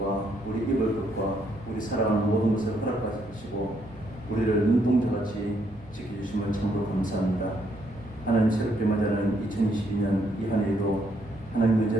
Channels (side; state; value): both; normal; correlation 0.73